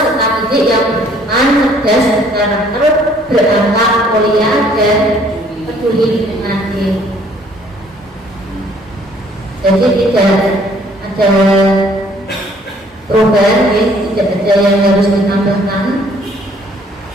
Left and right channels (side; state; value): both; normal; correlation 0.60